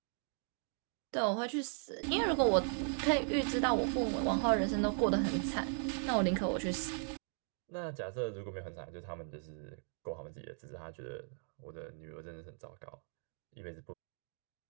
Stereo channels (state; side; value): silent; left; 53 dB below the other